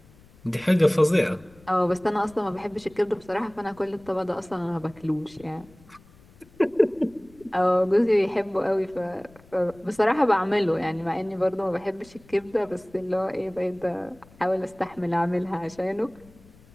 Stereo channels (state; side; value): noise; left; rumble, 26 dB below the sound